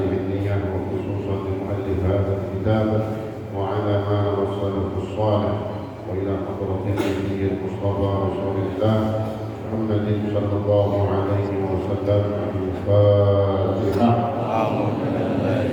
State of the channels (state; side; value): identical; both; correlation 1.00